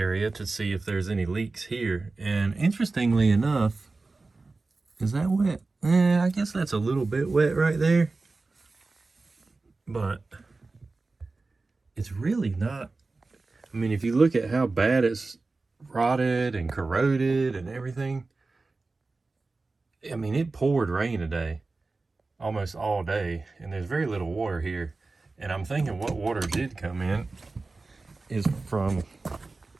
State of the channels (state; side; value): quieter; left; 3.6 dB